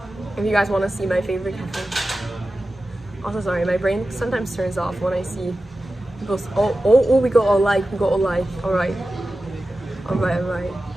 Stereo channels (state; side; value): normal; both; correlation 0.94